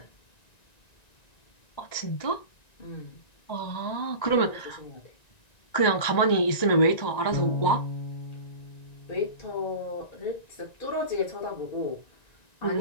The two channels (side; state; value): right; late; 1.9 ms